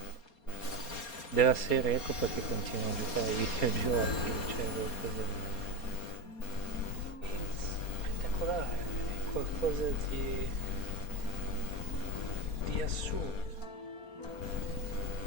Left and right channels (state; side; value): late; right; 4.3 ms